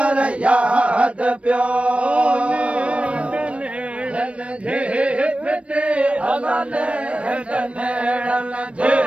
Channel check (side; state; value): left; late; 0.062 ms